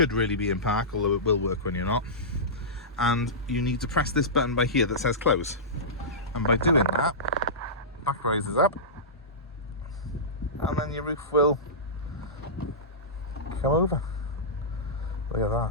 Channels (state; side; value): normal; both; correlation -0.17